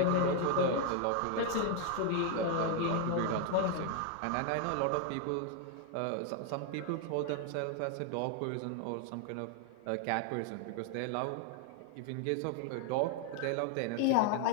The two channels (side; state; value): both; different; correlation 0.00